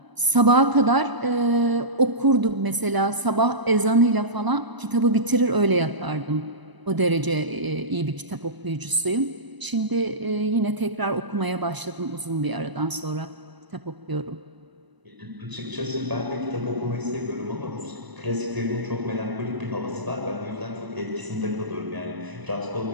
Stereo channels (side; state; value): left; late; 1.0 ms